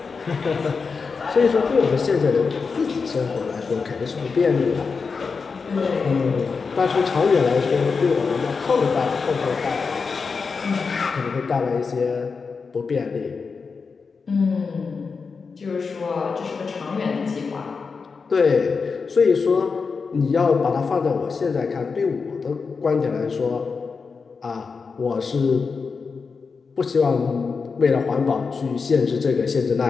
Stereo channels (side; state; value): right; quieter; 5.0 dB